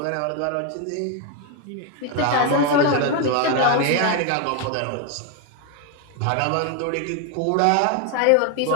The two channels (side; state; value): both; different; correlation 0.01